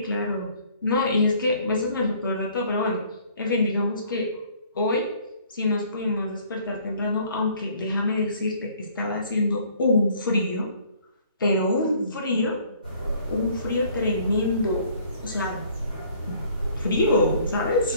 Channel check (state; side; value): inverted; both; correlation -0.57